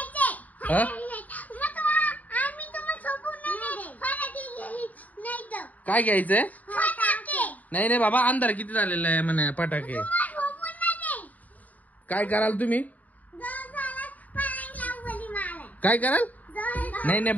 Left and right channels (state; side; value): late; right; 0.075 ms